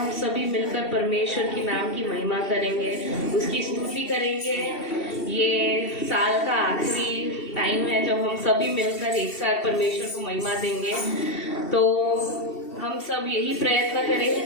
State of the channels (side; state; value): right; late; 2.7 ms